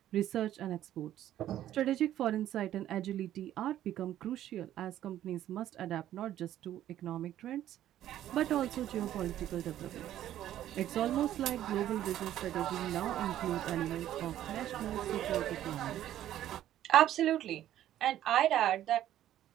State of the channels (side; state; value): left; quieter; 12.3 dB